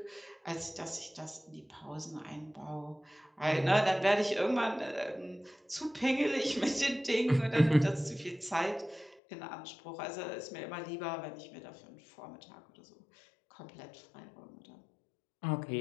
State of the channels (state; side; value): drops out; right; at 9.2 s